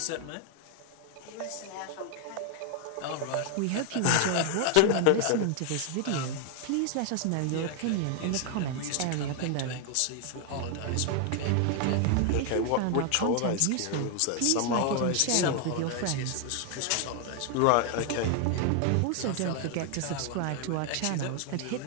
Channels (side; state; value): both; different; correlation 0.00